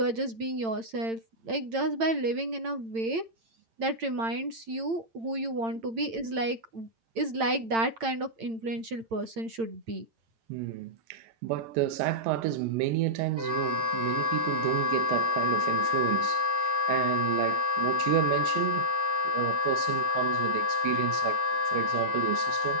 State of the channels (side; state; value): left; late; 8.9 ms